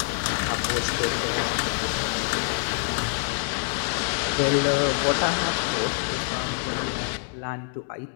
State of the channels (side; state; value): right; silent; digital silence